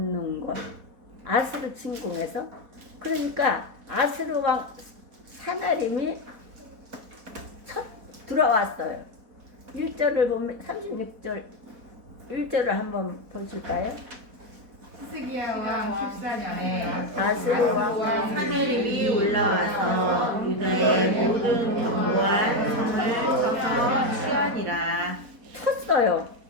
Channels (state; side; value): late; left; 4.1 ms